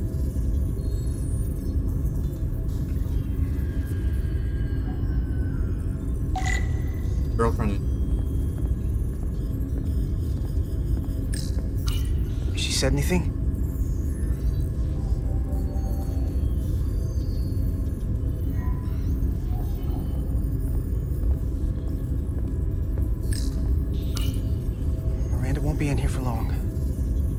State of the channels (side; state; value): both; identical; correlation 1.00